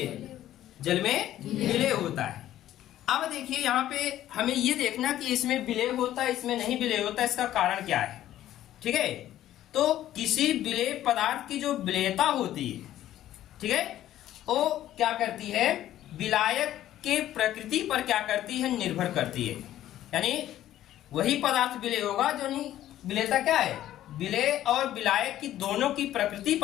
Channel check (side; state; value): right; quieter; 12.9 dB